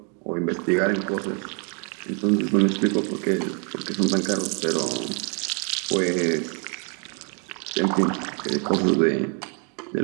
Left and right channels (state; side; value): quieter; left; 37.5 dB